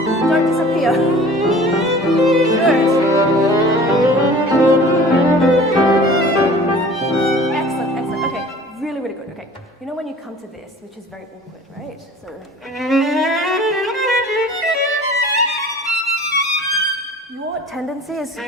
Don't disappear. Good. Excellent. Okay, really, really good. Okay, when you come to this, which is very awkward, right? So. Your tendency is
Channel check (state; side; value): normal; both; correlation 0.45